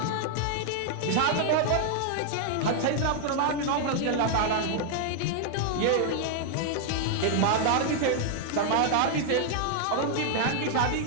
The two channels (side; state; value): both; different; correlation 0.00